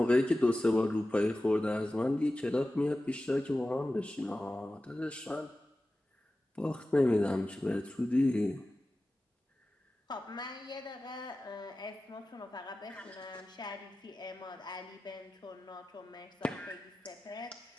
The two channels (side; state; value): both; normal; correlation 0.95